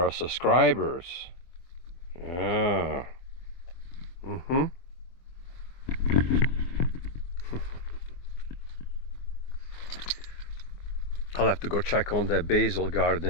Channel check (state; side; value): late; right; 23 ms